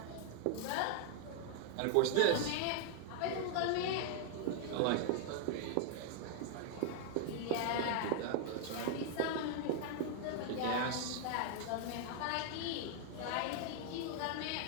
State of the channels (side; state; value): both; different; correlation 0.00